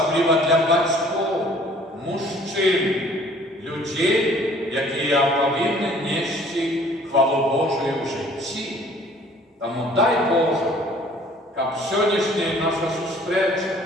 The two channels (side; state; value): both; normal; correlation 0.55